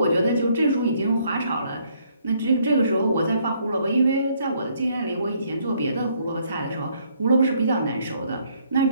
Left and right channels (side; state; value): both; inverted; correlation -0.68